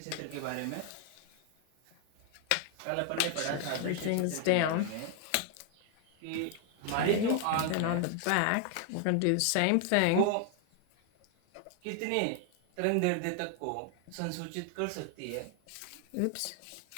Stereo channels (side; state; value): both; different; correlation 0.00